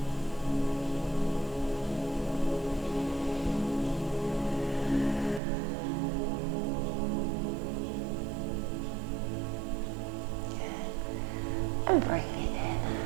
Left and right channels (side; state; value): left; drops out; at 5.4 s